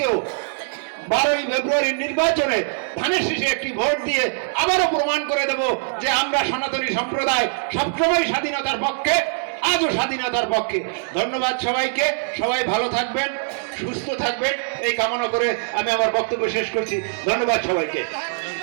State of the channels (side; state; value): left; silent; digital silence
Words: 12ই ফেব্রুয়ারির নির্বাচনে ধানের শীষে একটি ভোট দিয়ে আবারও প্রমাণ করে দেব যে আমরা সনাতনী সম্প্রদায় সবসময় স্বাধীনতার পক্ষে, আজও স্বাধীনতার পক্ষে। ধন্যবাদ সবাইকে। সবাই ভালো থাকবেন, সুস্থ থাকবেন এই কামনা করে আমি আমার বক্তব্য শেষ করছি। ধন্যবাদ সবাইকে।